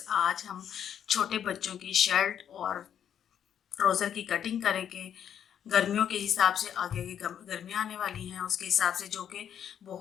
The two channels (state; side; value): quieter; right; 9.2 dB